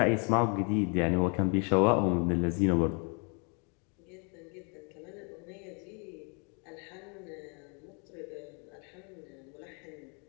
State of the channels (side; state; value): right; quieter; 35.5 dB